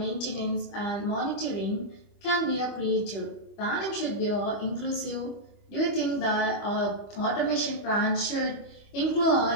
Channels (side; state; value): right; late; 25 ms